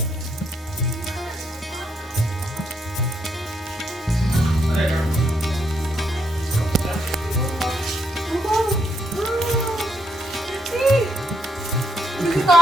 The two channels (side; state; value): both; normal; correlation 0.77